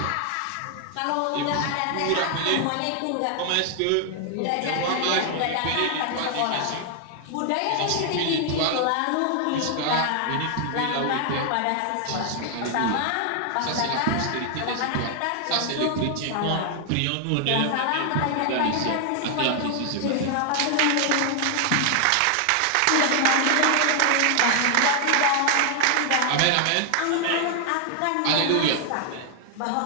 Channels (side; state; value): both; different; correlation 0.00